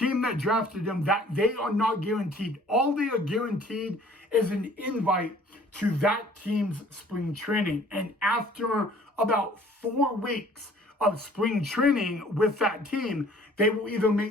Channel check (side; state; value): both; normal; correlation 0.54